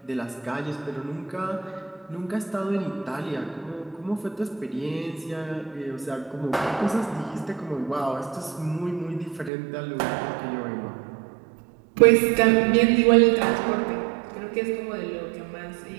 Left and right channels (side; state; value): left; drops out; at 9.5 s